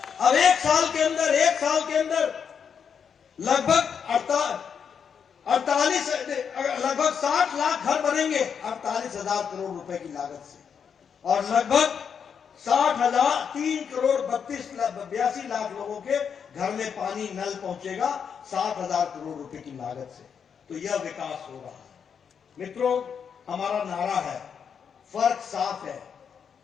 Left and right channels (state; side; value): quieter; right; 7.1 dB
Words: अब 1 साल के अंदर लगभग 60 लाख घर बनेंगे 48,000 करोड़ रुपए की लागत से। और लगभग 3,82 लाख लोगों के घर में पानी, नल पहुंचेगा 60,000 करोड़ रुपए की लागत से। तो यह विकास हो रहा है। मित्रों, हमारा नारा है, फर्क साफ है,